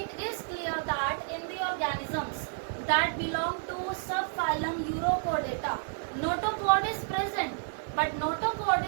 is clear that in the organisms that belong to subphylum Urochordata, notochord is present, but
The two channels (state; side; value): silent; left; digital silence